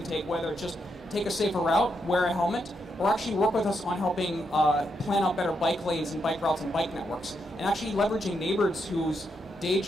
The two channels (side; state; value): both; normal; correlation 0.81